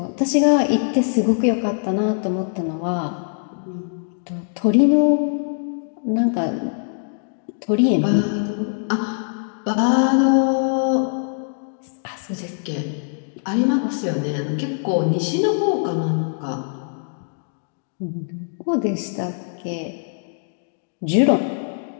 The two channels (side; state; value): right; silent; digital silence